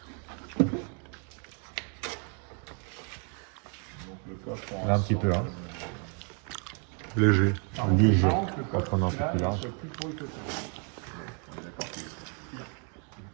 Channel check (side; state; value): left; quieter; 39.7 dB